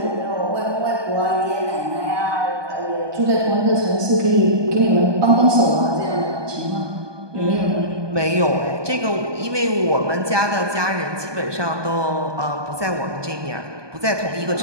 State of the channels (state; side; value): late; left; 1.2 ms